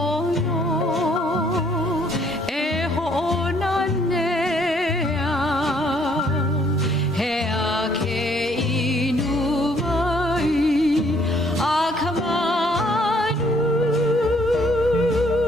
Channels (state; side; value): normal; both; correlation 0.64